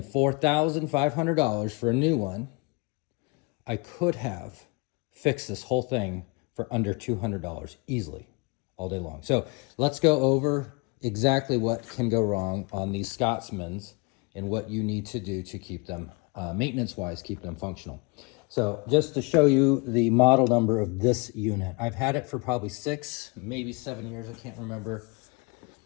$4,500 for a new one, I could have fixed this whole thing for under $200 easily all day long. So let's go over exactly what can go wrong on these Scotsmans and what you need to do to keep them, maintenance-wise, keep them functional. So just to show you the model number of this unit, I've had it for probably 6, maybe 7 years, I can't remember.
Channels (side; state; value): right; quieter; 29.4 dB